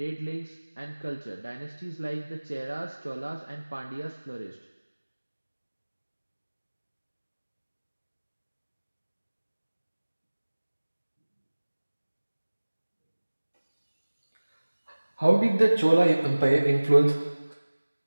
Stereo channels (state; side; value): inverted; both; correlation -1.00